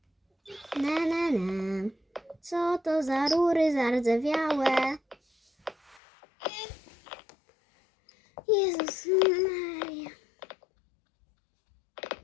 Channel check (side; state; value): right; drops out; at 6.0 s